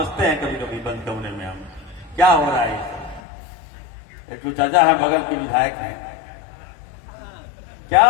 हैं कभी कभी बंद कमरे में। हम क्या हो रहा है। एक तो चाचा है, बगल के विधायक हैं, क्या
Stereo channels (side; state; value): right; drops out; at 3.2 s